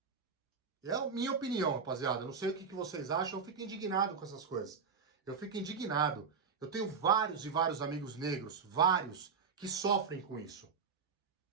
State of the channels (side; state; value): left; quieter; 5.7 dB